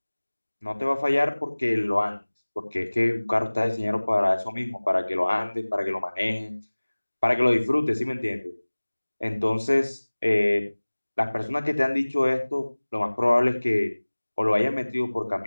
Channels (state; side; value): inverted; both; correlation -1.00